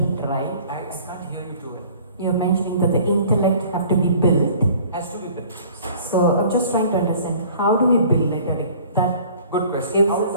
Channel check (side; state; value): both; inverted; correlation -0.50